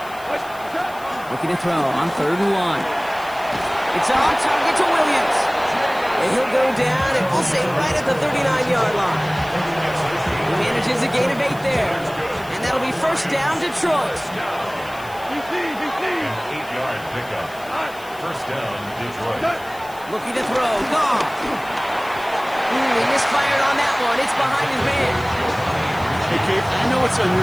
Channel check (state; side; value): noise; left; hiss, 21 dB below the sound